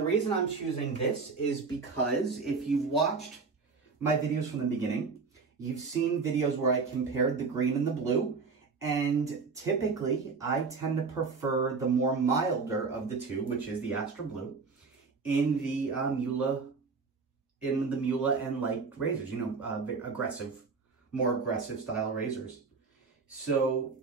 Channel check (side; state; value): left; quieter; 4.7 dB